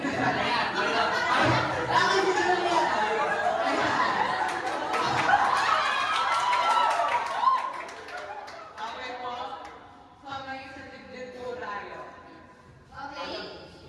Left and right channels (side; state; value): both; identical; correlation 1.00